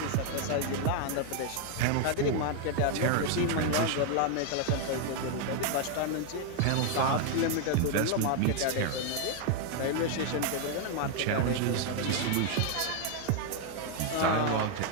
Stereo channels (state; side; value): different; both; correlation 0.00